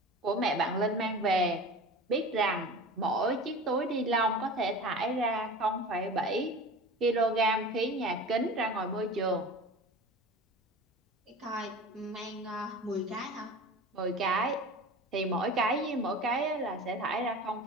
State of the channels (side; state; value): both; normal; correlation 0.35